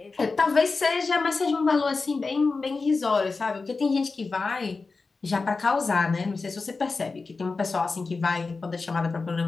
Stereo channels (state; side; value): quieter; right; 4.1 dB